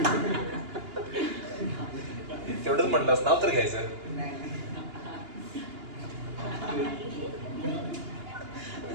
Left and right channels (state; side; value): late; left; 2.8 ms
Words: तेवढंच म्हटलंस, नाव तर घ्यायचं.